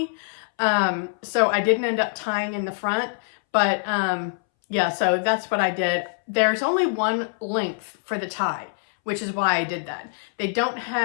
So I didn't end up tying in the front, but yeah, so that's what I did. There's only one length for the tie, which is why I did that. They don't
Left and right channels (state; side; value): silent; right; 62 dB below the other